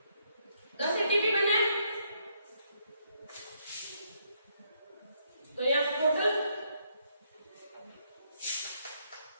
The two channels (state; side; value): inverted; both; correlation -0.73